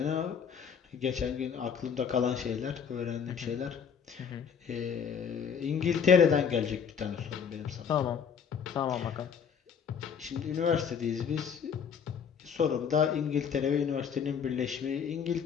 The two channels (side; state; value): right; quieter; 7.1 dB